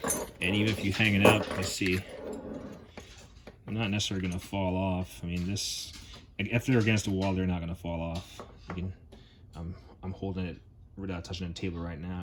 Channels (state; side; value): identical; both; correlation 1.00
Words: And even if you hang it up, let's see, they're not necessarily going to fall off. I mean, this, if they're against the wall, they're not going to fall off. You can, I'm holding it without touching the table right